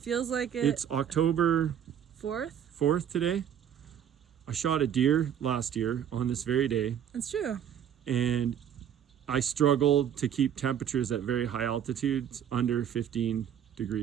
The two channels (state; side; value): quieter; left; 9.3 dB